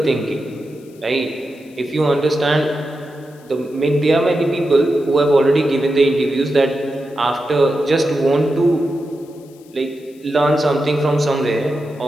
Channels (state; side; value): noise; left; hiss, 29 dB below the sound